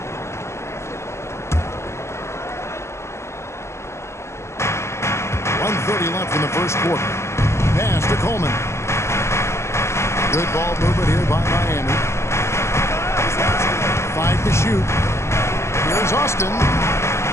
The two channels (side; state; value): right; late; 0.13 ms